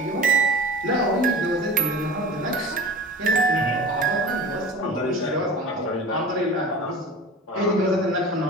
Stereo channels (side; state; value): both; normal; correlation 0.36